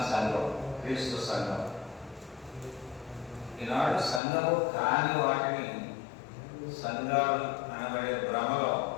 సంఘం క్రీస్తు సంఘం. ఈనాడు సంఘము కాని వాటిని సంఘాలు అనబడే భ్రమలో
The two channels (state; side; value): drops out; right; at 4.2 s